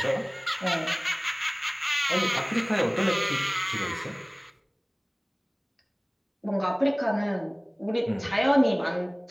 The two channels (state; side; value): identical; both; correlation 1.00